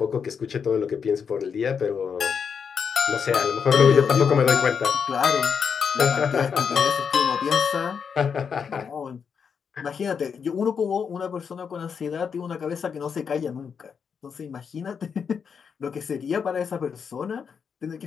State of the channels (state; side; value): quieter; right; 6.5 dB